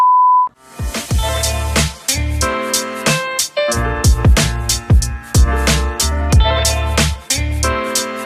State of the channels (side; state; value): both; identical; correlation 1.00